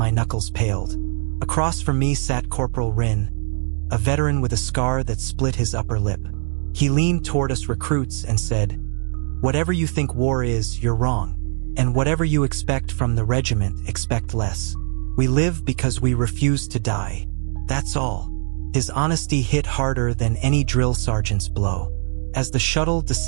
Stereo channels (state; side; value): silent; left; 64 dB below the other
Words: knuckles paled. Across from me sat Corporal Rin, a veteran with a scar that split his upper lip. He leaned toward us recruits and said, "Whatever you think war is, you're wrong. And whatever you expect from the regiment, expect less. We live because we refuse to die. That's all." His honesty hit harder than any drill sergeant's blow. As the shuttle